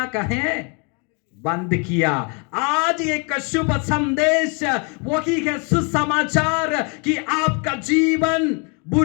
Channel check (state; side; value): quieter; right; 35.1 dB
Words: कहें बंद किया। आज एक शुभ संदेश वही है, सुसमाचार कि आपका जीवन